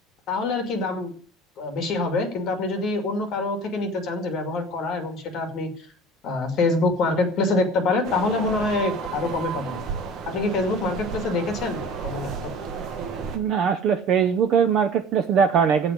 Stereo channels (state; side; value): normal; both; correlation 0.41